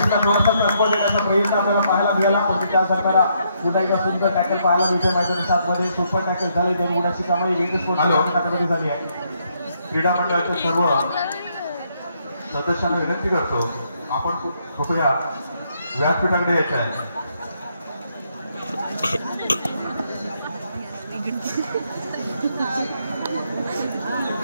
थोडासा संपर्क देण्याचा प्रयत्न आपल्याला पाहायला मिळाला पण त्या दरम्यान पुन्हा एकदा सुंदर टॅकल पाहायला मिळते. मैदानी 7 मध्ये सुपर टॅकल झाले. 2 गुणाची कमाई बीज स्पोर्ट्स संघामध्ये झाली आहे. क्रीडा मंडळाच्या सर्व सदस्यांना विनंती करतो, आपण कृपया व्यासपीठाकडे यायचे आहे.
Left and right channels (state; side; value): inverted; both; correlation -0.74